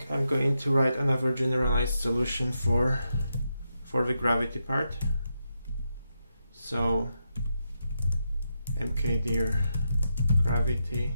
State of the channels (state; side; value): inverted; both; correlation -0.84